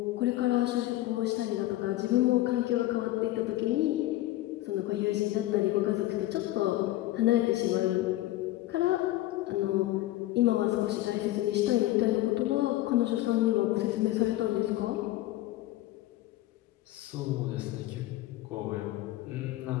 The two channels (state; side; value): quieter; right; 16.2 dB